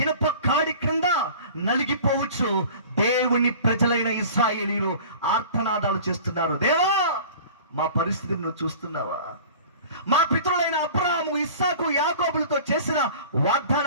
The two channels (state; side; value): inverted; both; correlation -0.42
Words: ఇనుప కాడి క్రింద నలిగిపోవచ్చు దేవుని ప్రజలైన ఇశ్రాయేలీయులు ఆర్తనాదాలు చేస్తున్నారు. దేవా, మా పరిస్థితిని నువ్వు చూస్తున్నావా? మా పితరులైన అబ్రహాము, ఇస్సాకు, యాకోబులతో చేసిన